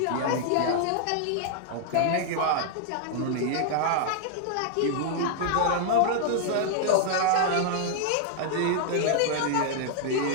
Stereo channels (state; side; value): different; both; correlation -0.01